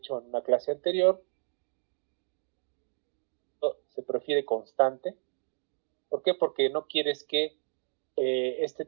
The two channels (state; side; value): silent; left; 57 dB below the other